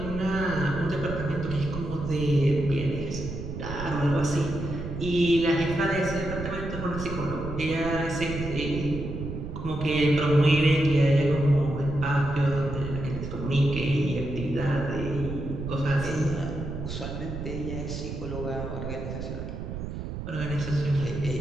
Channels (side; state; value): right; noise; rumble, 7 dB below the sound